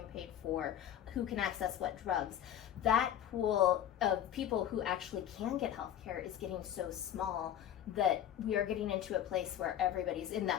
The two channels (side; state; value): right; quieter; 10.6 dB